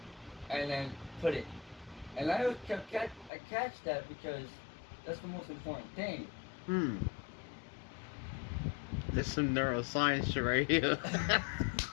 and then put it. And I catch that because that's the most important thing. Hmm. There's some neuroscience shit right here.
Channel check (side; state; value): right; drops out; at 3.3 s